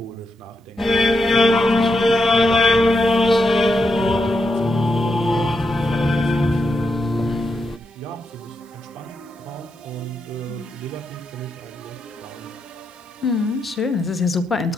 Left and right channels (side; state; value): both; normal; correlation 0.84